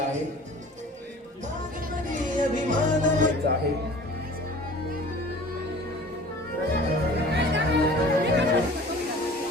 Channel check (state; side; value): normal; both; correlation 0.44